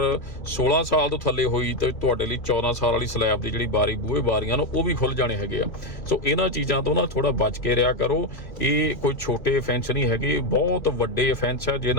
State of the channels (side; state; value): right; late; 2.7 ms